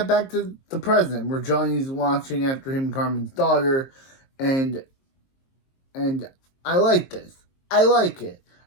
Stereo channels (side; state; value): right; late; 22 ms